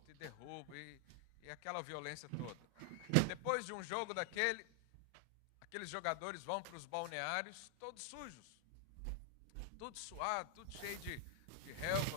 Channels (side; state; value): both; different; correlation 0.00